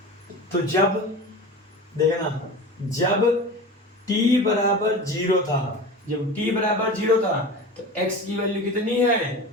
तो जब देखना, जब t बराबर 0 था, जब t बराबर 0 था, तो x की वैल्यू कितनी है?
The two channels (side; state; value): both; normal; correlation 0.31